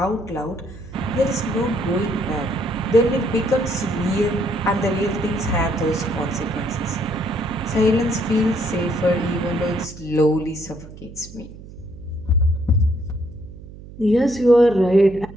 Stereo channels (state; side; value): noise; right; hum, 16 dB below the sound